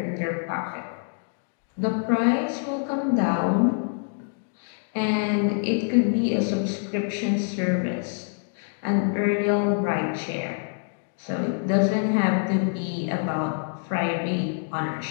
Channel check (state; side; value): silent; right; 61 dB below the other